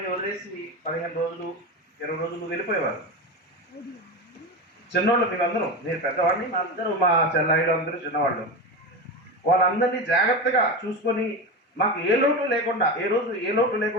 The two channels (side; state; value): both; normal; correlation 0.21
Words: వదిలేసి 15 రోజులు 20 రోజులు వెళ్ళిపోయేవారు. చిన్నవాళ్ళు మేమందరూ, నేను పెద్దవాడిని, మా అందరూ మా చెల్లాయిలు అందరూ చిన్నవాళ్ళు. వాళ్ళందరినీ జాగ్రత్తగా చూసుకొని మాకు ఏ లోటు